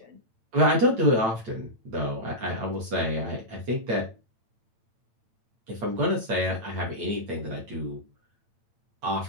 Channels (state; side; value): late; left; 8.9 ms